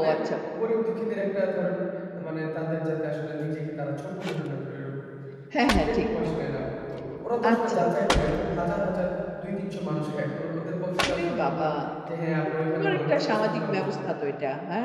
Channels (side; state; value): both; identical; correlation 1.00